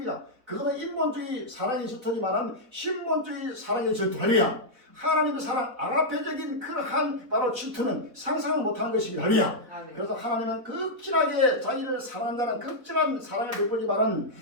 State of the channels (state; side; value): late; left; 4.1 ms